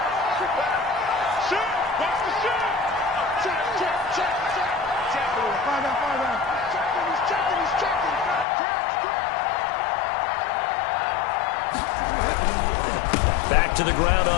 Back to the ground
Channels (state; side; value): drops out; right; at 8.5 s